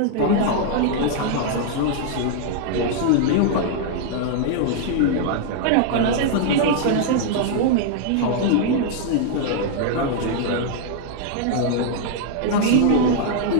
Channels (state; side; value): different; both; correlation -0.01